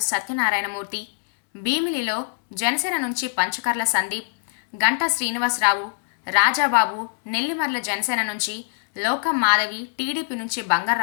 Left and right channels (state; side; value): silent; right; digital silence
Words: సత్యనారాయణమూర్తి, భీమిలిలో జనసేన నుంచి పంచకర్ల సందీప్, గంటా శ్రీనివాసరావు, రాజాబాబు, నెల్లిమర్ల జనసేన నుంచి లోకం మాధవి, టీడీపీ నుంచి